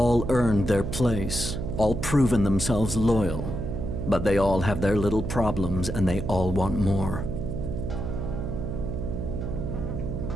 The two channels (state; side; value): noise; right; hum, 4 dB below the sound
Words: earned their place, all proven themselves loyal. But they all have their little problems, and they all want more.